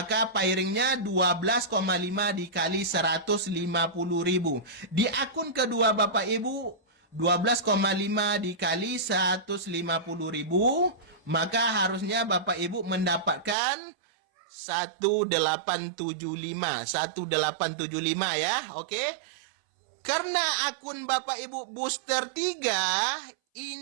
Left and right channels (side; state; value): left; drops out; at 13.6 s